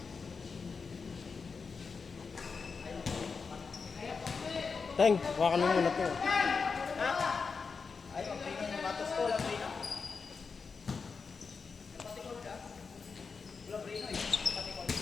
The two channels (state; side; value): quieter; right; 5.1 dB